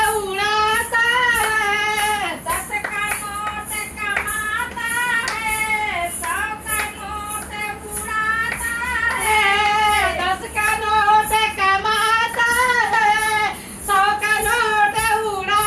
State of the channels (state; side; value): identical; both; correlation 1.00